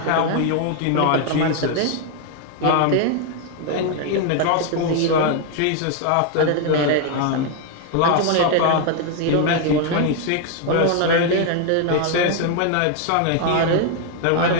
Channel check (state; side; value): different; both; correlation 0.00